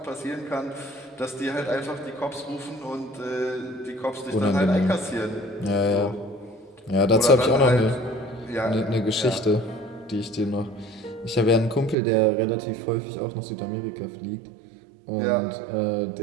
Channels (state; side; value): drops out; left; at 12.0 s